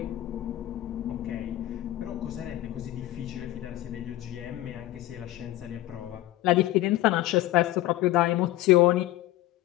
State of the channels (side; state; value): right; quieter; 15.6 dB